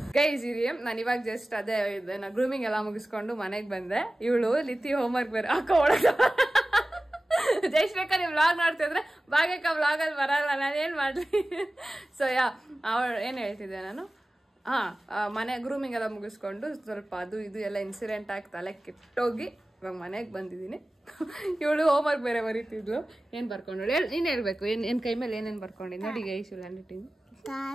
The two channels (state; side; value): normal; both; correlation 0.96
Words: ಗೈಸ್ ಇರಿ, ನಾನು ಇವಾಗ ಜಸ್ಟ್ ಅದೇ ಗ್ರೂಮಿಂಗ್ ಎಲ್ಲ ಮುಗಿಸ್ಕೊಂಡು ಮನೆಗೆ ಬಂದೆ. ಇವಳು ಲಿತಿ ಹೋಮ್ವರ್ಕ್ ಬೇರೆ ಒಳಗ ಜೈಶ್ರೇಖಾ ನೀವು ವ್ಲಾಗ್ ನೋಡ್ತಿದ್ರೆ ಭಾಗ್ಯಕ್ಕ ವ್ಲಾಗಲ್ಲಿ ಬರಲ್ಲ, ನಾನು ಏನ್ ಮಾಡ್ಲಿ. ಸೊ ಅವಳು ಏನ್ ಹೇಳ್ತಿದ್ದೆ ನಾನು, ಮನೆ ಗ್ರೂಮಿಂಗ್ ಎಲ್ಲ ಮುಗಿಸ್ಕೊಂಡು ಸ್ವಲ್ಪ ಅದು ಇದು ಎಲ್ಲ ಇನ್ಸಿಡೆಂಟ್ ಆಗಿ ತಲೆ ಕೆಟ್ಟೋಗಿ ಇವಾಗ ಮನೆಗೆ ಬಂದಿದ್ದೀನಿ. ಇವಳು ಹೋಮ್ವರ್ಕ್ ಬೇರೆ ಬರೀತಿದ್ಲು. ಏನ್ ಬರ್ಕೊಂಡು ನೀನ್ ಹೇಳ್ಬೇಕು, ಏನ್ ಕೈ ಮೇಲೆ ಏನೇನ್ ಬರ್ಕೊಂಡಿದ್ ನೋಡಿ ಗೈಸ್. ಹ್ಯಾಂಡ್ ರೈಟಿಂಗ್